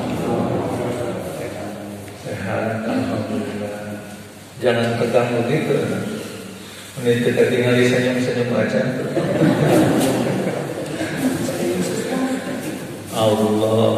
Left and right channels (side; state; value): both; identical; correlation 1.00